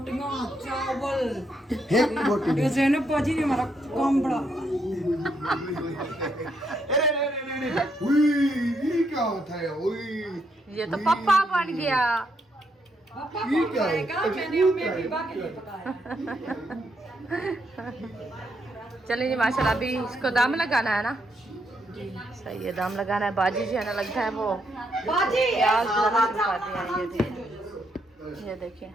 चावल एक बोटी ये ज़ैनब बाजी ने हमारा काम बड़ा उई ये क्या होता है उई ये तो पप्पा बन गया। पापा ये को क्या है? खाएगा मैंने उम्मीद बीबा के लिए पकाया चलिए जी माशाल्लाह अभी इसको दाम लगाना है ना। सही है दाम लगाना है। बाजी जी है ना लगता है वो बाजी प्याज लगा दिया ये देखिए ये देखिए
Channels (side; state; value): both; normal; correlation 0.77